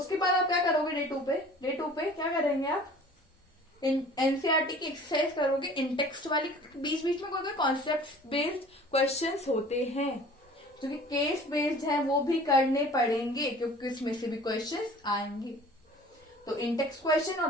बाद आप क्या करोगे, डे 2 पे क्या करेंगे, आप एनसीईआरटी की एक्सरसाइज करोगे, इंटेक्स्ट वाली। बीच बीच में कोई कॉन्सेप्ट बेस्ड क्वेश्चंस होते हैं जो कि केस बेस्ड है, वो भी करने पड़ेंगे, क्योंकि इसमें से भी क्वेश्चंस आएंगे। तो इंटेक्स्ट क्वेश्चन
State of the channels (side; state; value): both; normal; correlation 0.47